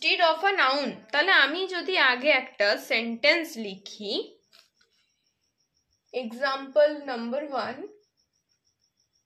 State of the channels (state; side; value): identical; both; correlation 1.00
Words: of a noun. তাহলে আমি যদি আগে একটা সেন্টেন্স লিখি, example number 1,